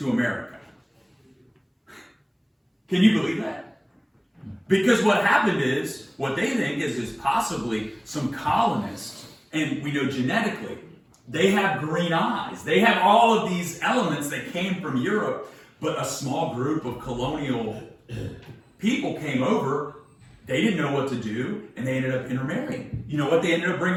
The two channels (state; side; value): identical; both; correlation 1.00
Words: America. Can you believe that? Because what happened is, what they think is possibly some colonists, and we know genetically, they have green eyes. They have all of these elements that came from Europe, but a small group of colonial people came over. They didn't know what to do, and they ended up intermarrying. You know what they ended up